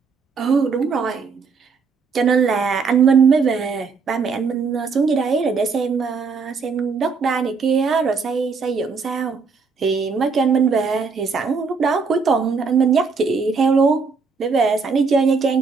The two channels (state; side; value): quieter; left; 5.0 dB